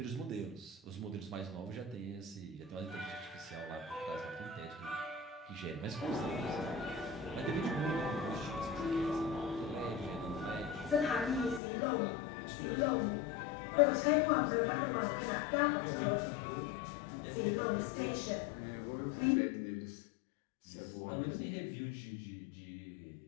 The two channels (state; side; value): drops out; right; at 11.6 s